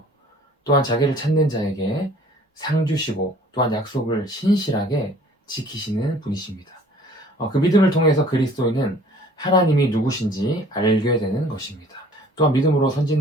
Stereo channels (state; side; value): normal; both; correlation 0.52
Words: 또한 자기를 찾는 자에게 상 주시고 또한 약속을 신실하게 지키시는 분이십니다. 그 믿음을 통해서 그리스도인은 하나님이 누구신지 알게 되는 것입니다. 또한 믿음으로